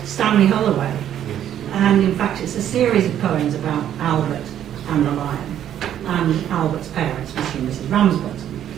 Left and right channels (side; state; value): left; quieter; 10.6 dB